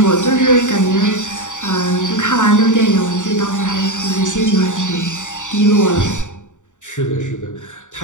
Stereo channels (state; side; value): late; right; 0.86 ms